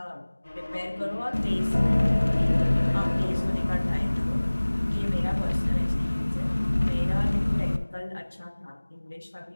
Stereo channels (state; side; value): inverted; both; correlation -1.00